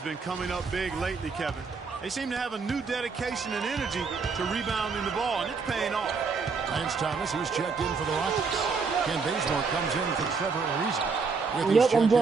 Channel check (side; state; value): left; quieter; 4.9 dB